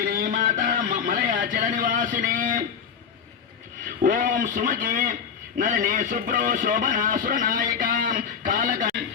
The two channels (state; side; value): quieter; right; 7.0 dB